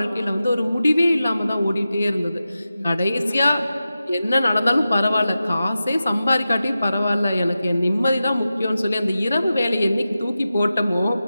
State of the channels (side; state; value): both; inverted; correlation -0.93